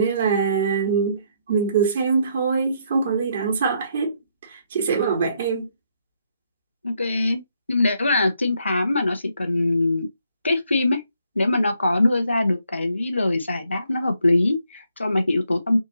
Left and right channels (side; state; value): both; inverted; correlation -0.73